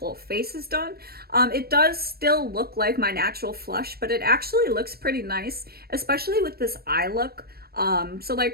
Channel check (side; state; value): left; late; 0.45 ms